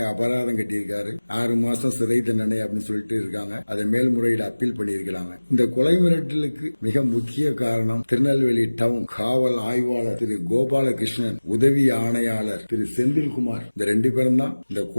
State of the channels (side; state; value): both; inverted; correlation -1.00